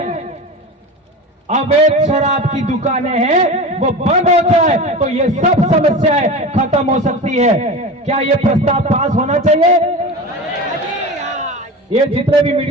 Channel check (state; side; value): normal; both; correlation 0.30